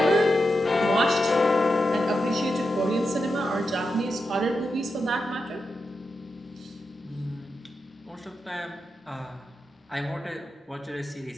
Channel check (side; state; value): both; normal; correlation 0.88